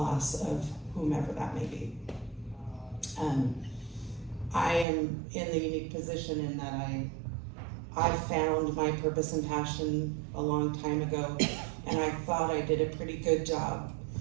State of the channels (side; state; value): left; drops out; at 4.9 s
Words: of whomever that may be. I am in the unique position in that I found my purpose and passion a long time ago, and I thought I did a pretty good job